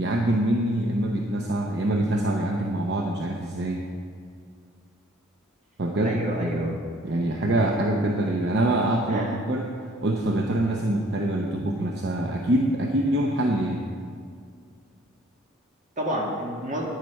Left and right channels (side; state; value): both; normal; correlation 0.59